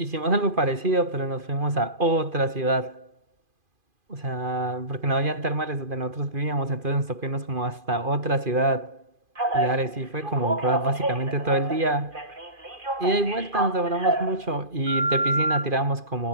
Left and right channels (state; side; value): late; left; 2.5 ms